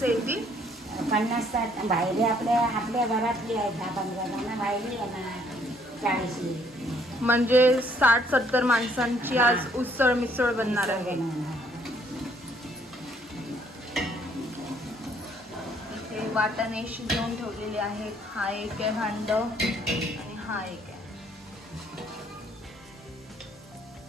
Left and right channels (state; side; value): normal; both; correlation 0.65